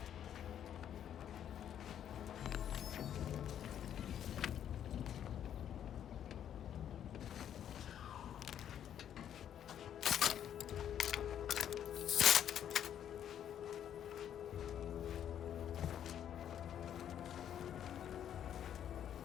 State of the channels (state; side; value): quieter; right; 9.8 dB